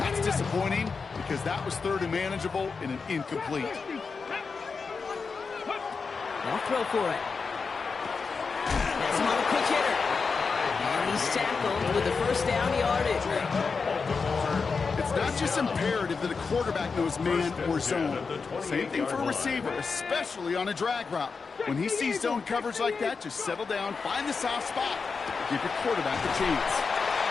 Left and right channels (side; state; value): right; quieter; 4.9 dB